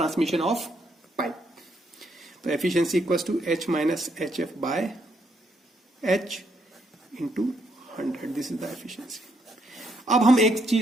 of pipe. तो efficiency equals to h minus h f by H into 100, this is the efficiency. अब हम एक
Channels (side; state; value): both; normal; correlation 0.75